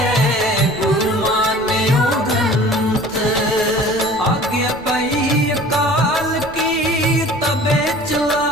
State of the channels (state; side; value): noise; left; rumble, 19 dB below the sound